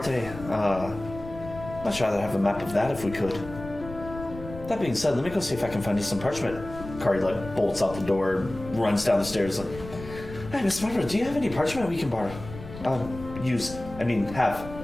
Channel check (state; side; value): noise; left; rumble, 13 dB below the sound